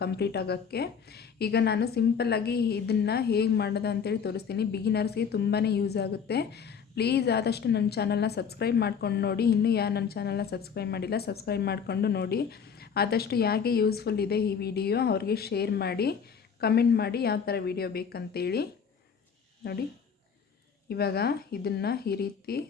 ಕಂಪ್ಲೀಟ್ ಆಗೋಕ್ಕೆ. ಈಗ ನಾನು ಸಿಂಪಲ್ಲಾಗಿ ಇದನ್ನು ಹೇಗೆ ಮಾಡೋದು ಅಂತೇಳಿ ತೋರಿಸ್ತೀನಿ. ಬಿಗಿನರ್ಸ್ಗೆ ತುಂಬಾ ಯೂಸ್ ಆಗುತ್ತೆ. ಪ್ಲೀಸ್ ಆದಷ್ಟು ನನ್ನ ಚಾನಲ್ನ ಸಬ್ಸ್ಕ್ರೈಬ್ ಮಾಡ್ಕೊಂಡು ನೋಡಿ. ಇನ್ನೂ ಯಾರು ನನ್ನ ಚಾನಲ್ನ ಸಬ್ಸ್ಕ್ರೈಬ್ ಮಾಡಿಲ್ಲ, ಸಬ್ಸ್ಕ್ರೈಬ್ ಮಾಡಿಕೊಂಡು ನೋಡಿ. ಆದಷ್ಟು ಯಾಕೆ ಯೂಸ್ಫುಲ್ ಇದೆ ಈ ವಿಡಿಯೋ ಅವ್ರಿಗೆ ಶೇರ್ ಮಾಡಿ, ಕಮೆಂಟ್ ಮಾಡಿ ಯಾವ ಥರ ವಿಡಿಯೋ ಬೇಕಂತೇಳಿ. ನೋಡಿ, ಇವಾಗ ಇದನ್ನು ಈ ರೀತಿ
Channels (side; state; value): right; quieter; 6.7 dB